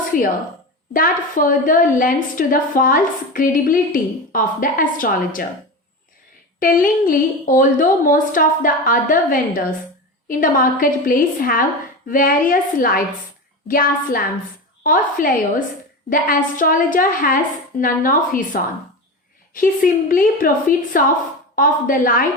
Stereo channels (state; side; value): normal; both; correlation 0.24